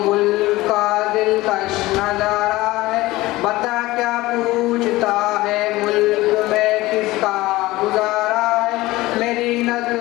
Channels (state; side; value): quieter; right; 18.9 dB